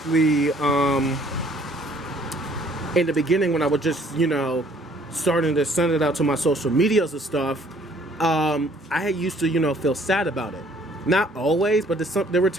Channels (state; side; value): normal; both; correlation 0.60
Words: in the beginning when I was just, you know, starting to send it out to my social medias and stuff, I had used to, you know, feel sad about it. Not always, but there were